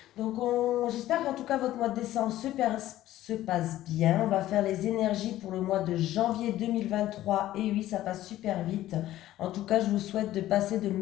Donc j'espère qu'en tout cas votre mois de décembre se passe bien. On va faire les énergies pour le mois de janvier 2023 et oui, ça passe super vite. En tout cas, je vous souhaite de passer de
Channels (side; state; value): right; quieter; 14.3 dB